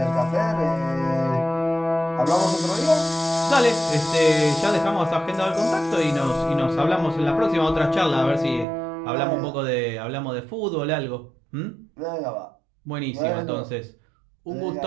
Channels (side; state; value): left; drops out; at 8.7 s